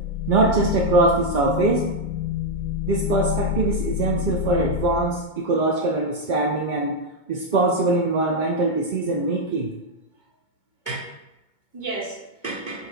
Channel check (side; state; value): right; late; 2.2 ms